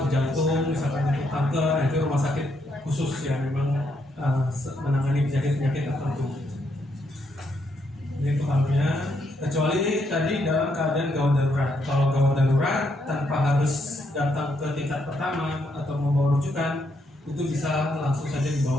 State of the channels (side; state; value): both; normal; correlation 0.76